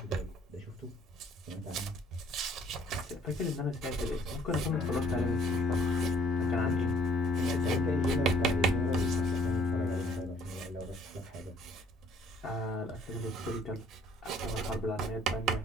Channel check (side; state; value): both; normal; correlation 0.59